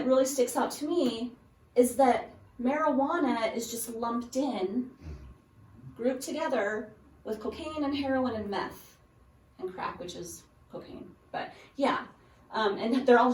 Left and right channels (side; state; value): both; identical; correlation 1.00